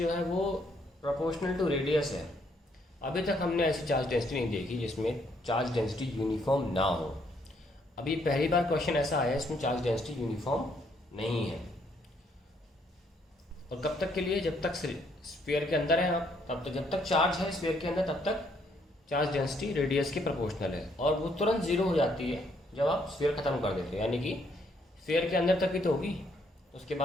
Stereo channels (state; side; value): normal; both; correlation 0.70